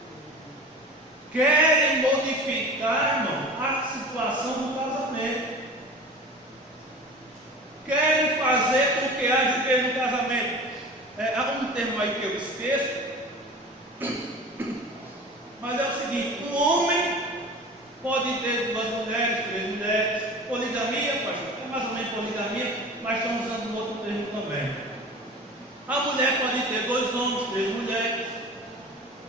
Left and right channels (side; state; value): both; normal; correlation 0.37